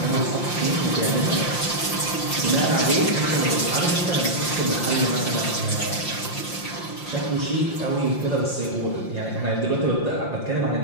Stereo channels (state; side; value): late; right; 5.8 ms